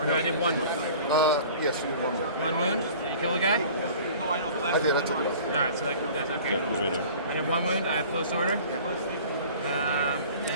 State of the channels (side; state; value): both; inverted; correlation -0.45